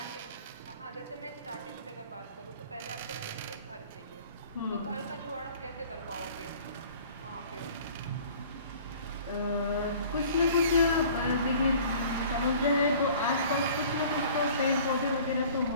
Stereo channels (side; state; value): both; inverted; correlation -0.49